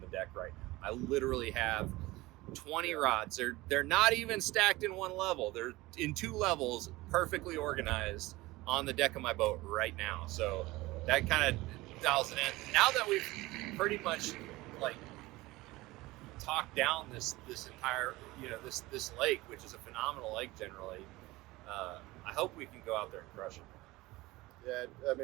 the deck right now. I literally have 20 rods. They're not even stacked in one level. They're in 2 levels, perfectly organized on the deck of my boat right now. So that kind of dials it in. Now that we've pretty much like talked down this entire, this lake, which is a phenomenal lake generally, I hope we can go out there and crush it. Yeah, I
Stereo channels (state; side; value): quieter; left; 20.0 dB